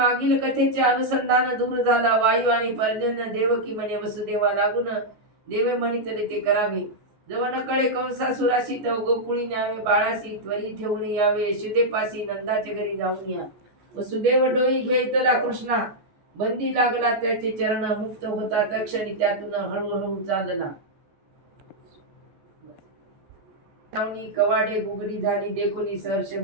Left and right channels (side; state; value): left; late; 14 ms